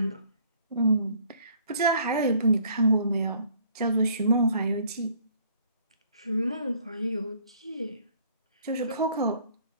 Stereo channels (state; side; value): inverted; both; correlation -0.59